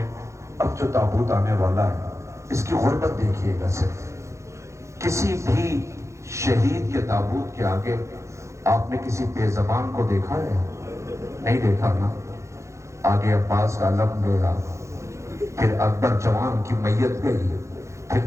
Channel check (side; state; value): left; late; 0.14 ms